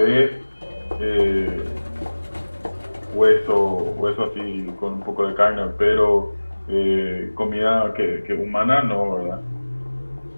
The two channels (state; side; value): inverted; both; correlation -1.00